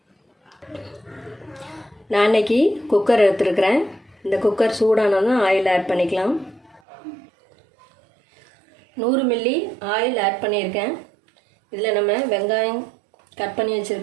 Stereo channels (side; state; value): left; drops out; at 6.8 s